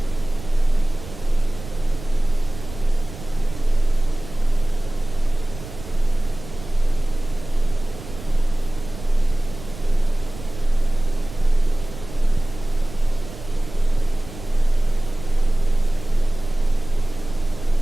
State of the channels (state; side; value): noise; right; rumble, 14 dB below the sound